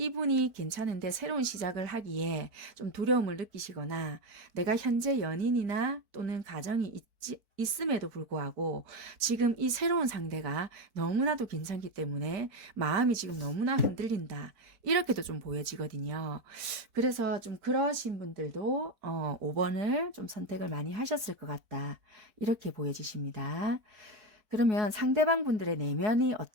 괜찮은데 새로운 시작을 하기에 좀 두려움을 느끼시거나 내가 현재 연인이나 또는 가정이 있음에도 불구하고 지금 이 새로운 상대가 너무나도 괜찮기 때문에 마음이 지금 너무나 흔들린다. 이렇게도 좀 보여지거든요. 그래서 좀 그러신 분들도 5번을 좀 선택을 많이 하셨을 것 같다. 이렇게 보여지십니다. 그러면 상대방 분들의 내면이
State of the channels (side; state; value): left; late; 4.6 ms